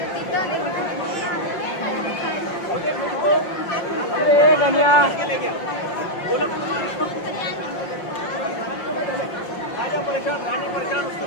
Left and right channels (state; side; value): late; right; 5.6 ms